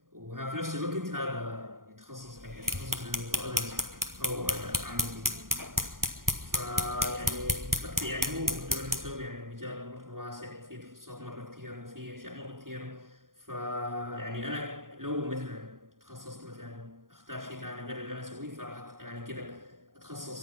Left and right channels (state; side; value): late; left; 0.91 ms